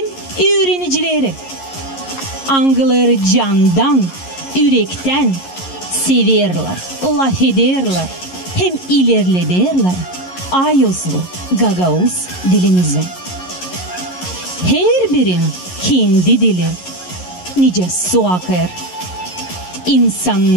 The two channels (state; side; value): late; right; 11 ms